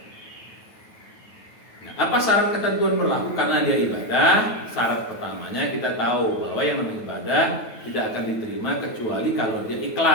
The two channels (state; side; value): late; right; 9.2 ms